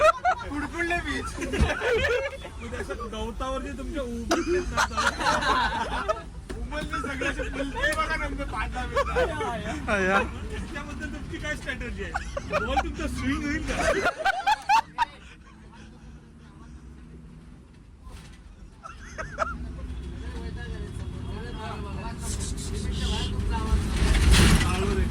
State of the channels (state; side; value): identical; both; correlation 1.00